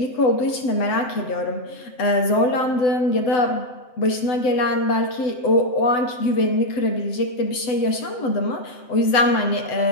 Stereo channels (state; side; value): late; right; 7.8 ms